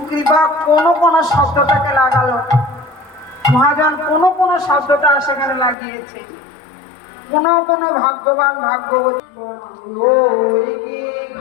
কৃপা কোনো কোনো শব্দটাকে লাগালো, মহাজন কোনো কোনো শব্দটা সেখানে লাগিয়েছে। কোন কোন ভাগ্যবান ভাগ্যবতী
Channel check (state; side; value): drops out; right; at 5.8 s